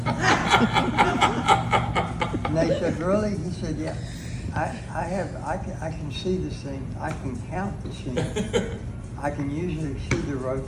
And they said, really? He said, yeah. I can see the seam. I can count the seam. I can usually see the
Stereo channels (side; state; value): both; identical; correlation 1.00